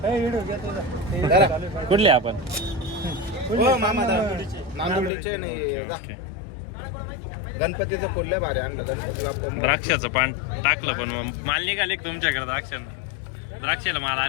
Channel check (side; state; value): right; drops out; at 5.1 s